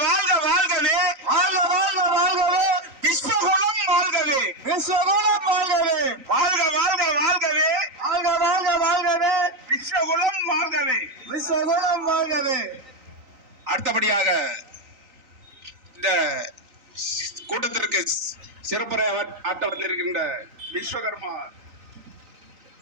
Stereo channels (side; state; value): left; late; 3.9 ms